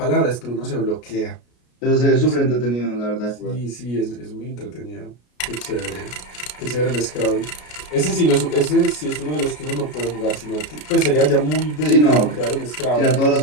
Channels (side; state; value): right; late; 33 ms